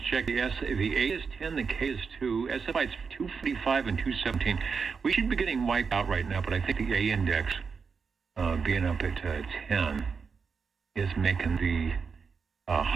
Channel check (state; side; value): quieter; left; 5.5 dB